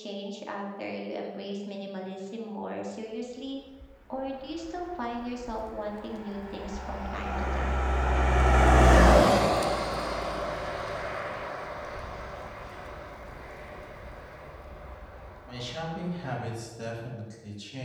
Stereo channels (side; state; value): both; identical; correlation 1.00